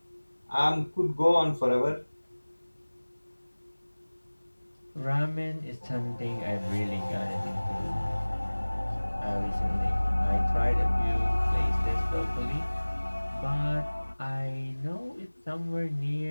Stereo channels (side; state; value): both; inverted; correlation -1.00